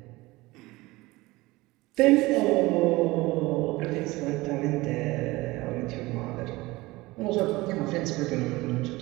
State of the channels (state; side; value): quieter; left; 20.8 dB